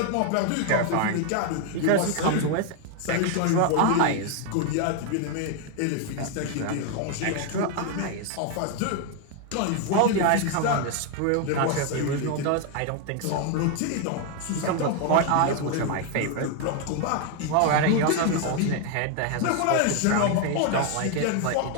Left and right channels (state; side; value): different; both; correlation 0.01